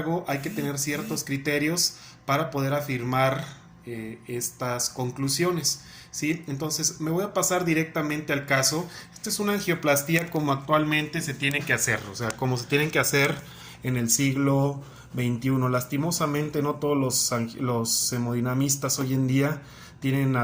hay que tener ciertos criterios para poder afirmar estas conclusiones. ¿Sí? Entonces me voy a pasar directamente al caso. Esta es una angioplastía como actualmente se tiene que hacer, o sea, como se tienen que hacer en el siglo XXI. Lastimosamente no todos los hemodinamistas hoy en día tienen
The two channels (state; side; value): identical; both; correlation 1.00